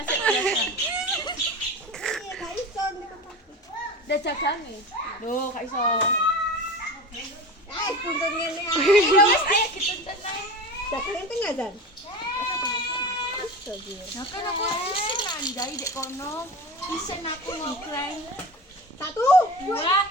Udah jajan nih. Loh, gak iso. Tuntun ngene ae. Wis ayo dituntun ae. Dagangan tengah dan. Nah, kan aku isin nandai dek kono. Isin aku ngokleng. Satu, Dua,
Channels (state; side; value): normal; both; correlation 0.30